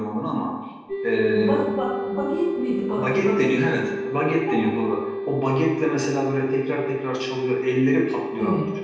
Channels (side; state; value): both; identical; correlation 1.00